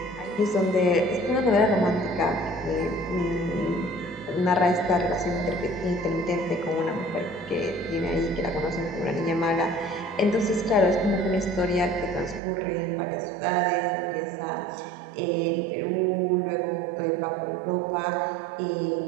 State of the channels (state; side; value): drops out; left; at 12.4 s